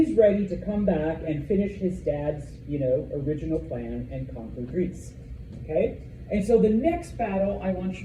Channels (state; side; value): identical; both; correlation 1.00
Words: ready to come back and finish his dad's, original plan and conquer Greece. Okay? And so the next battle I want you